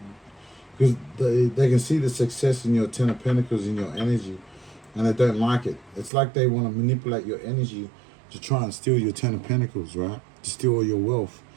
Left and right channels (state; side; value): drops out; left; at 6.1 s